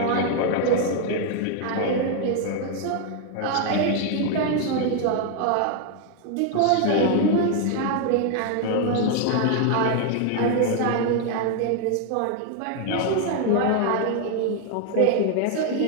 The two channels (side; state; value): both; different; correlation 0.00